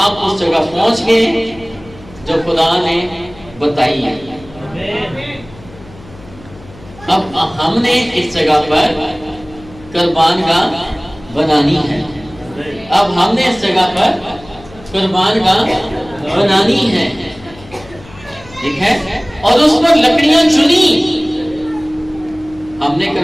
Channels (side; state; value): left; noise; hum, 21 dB below the sound